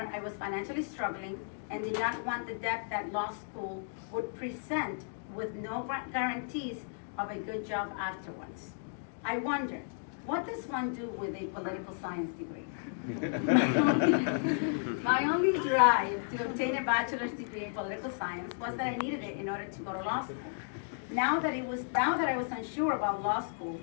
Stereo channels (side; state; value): right; silent; digital silence